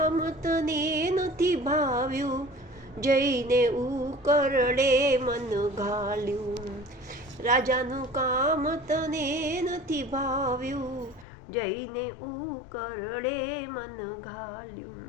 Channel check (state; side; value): drops out; right; at 11.2 s